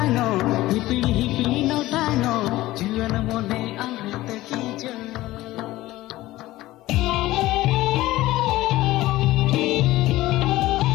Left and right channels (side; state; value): right; quieter; 17.1 dB